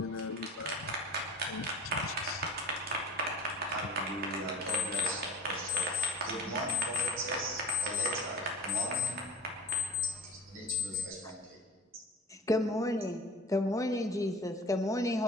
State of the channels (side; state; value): both; normal; correlation 0.35